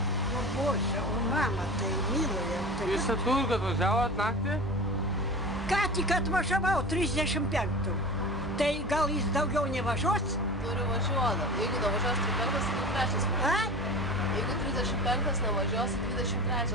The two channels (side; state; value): both; normal; correlation 0.33